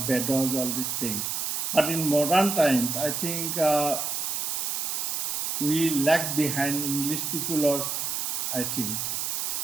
Vedas, all these things. But in modern times, I think we lag behind English people, or I think.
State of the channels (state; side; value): noise; right; hiss, 1 dB below the sound